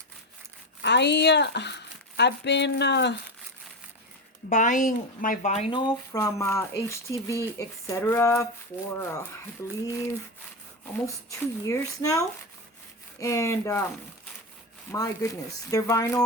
been buying my vinyl from HTV etc. for I believe almost 2 years now, and my goodness, their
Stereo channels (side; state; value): both; normal; correlation 0.17